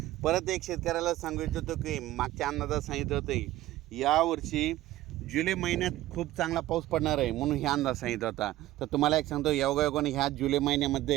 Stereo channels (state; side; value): quieter; left; 15.6 dB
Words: परत एक शेतकऱ्याला सांगू इच्छितो की मागच्या अंदाजात सांगितलं होतं यावर्षी जुलै महिन्यात खूप चांगला पाऊस पडणार आहे, म्हणून हे अंदाज सांगितला होता। तर तुम्हाला एक सांगतो योगायोगाने ह्या जुलै